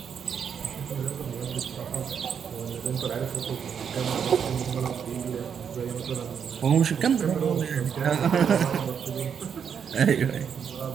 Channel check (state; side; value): quieter; left; 7.4 dB